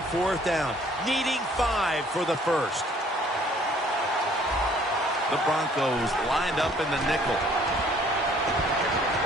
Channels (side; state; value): both; normal; correlation 0.59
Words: 4th down, needing 5 for the first. The Broncos lined up in the nickel.